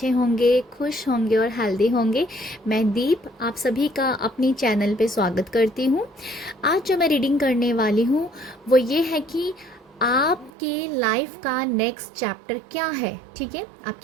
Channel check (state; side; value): drops out; left; at 10.5 s